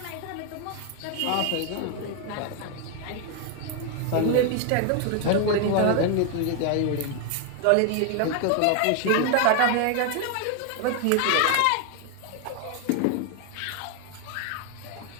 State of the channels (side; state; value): both; different; correlation 0.01